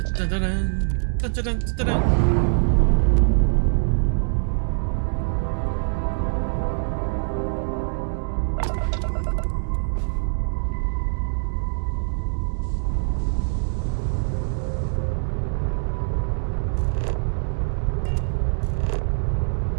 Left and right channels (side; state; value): left; silent; digital silence